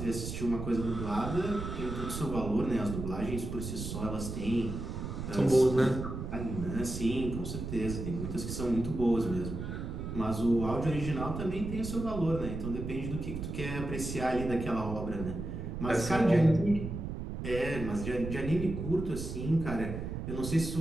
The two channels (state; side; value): noise; right; rumble, 6 dB below the sound